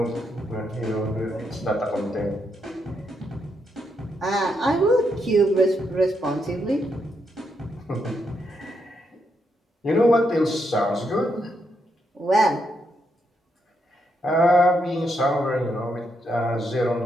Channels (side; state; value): both; normal; correlation 0.79